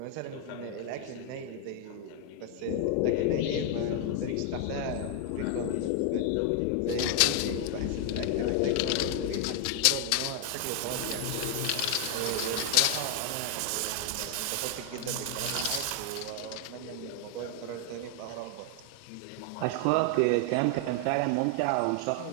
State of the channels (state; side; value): different; both; correlation 0.00